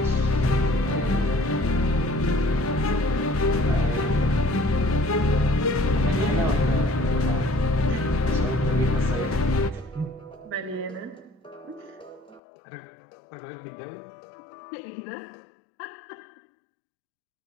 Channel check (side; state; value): right; drops out; at 12.4 s